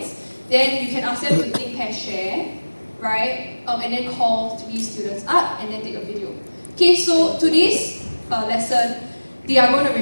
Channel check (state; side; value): inverted; both; correlation -1.00